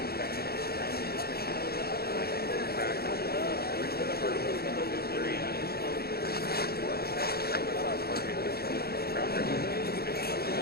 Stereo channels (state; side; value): late; right; 0.45 ms